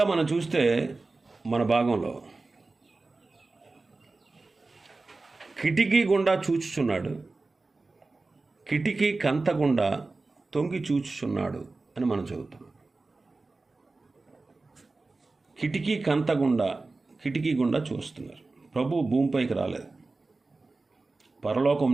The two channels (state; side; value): quieter; left; 3.5 dB